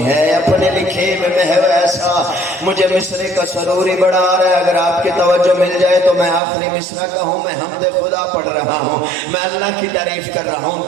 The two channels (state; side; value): drops out; left; at 6.4 s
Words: ہے، اپنے لکھے میں محو ایسا۔ مجھے مصرے کا سروری بڑا آ رہا ہے، اگر آپ کی توجہ مل جائے تو میں آخری مصرع کا ہوں، میں حمد خدا پڑھ رہا ہوں، میں اللہ کی تعریف کر رہا ہوں۔